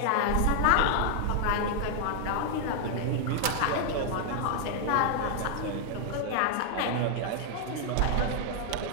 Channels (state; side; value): different; both; correlation 0.00